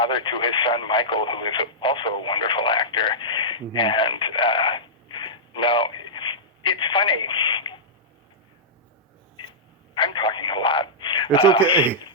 to his son Michael, who is also a wonderful actor. Mm-hmm. And it's funny. I'm talking a lot. It's okay.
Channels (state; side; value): normal; both; correlation -0.13